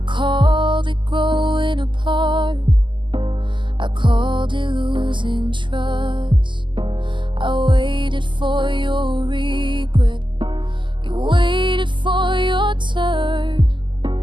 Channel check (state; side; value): late; left; 0.24 ms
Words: called it growing apart, I called it losing trust. I waited for your regret, you waited for your turn.